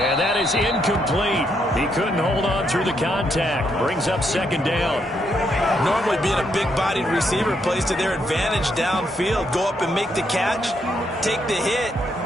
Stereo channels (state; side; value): normal; both; correlation 0.76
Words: that is incomplete. He couldn't hold on through the contact. Brings up second down. Normally being a big-bodied receiver plays to their advantage downfield. Go up and make the catch, take the hit,